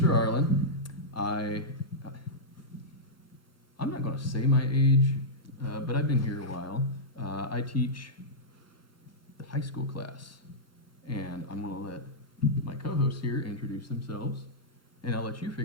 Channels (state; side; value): normal; both; correlation -0.10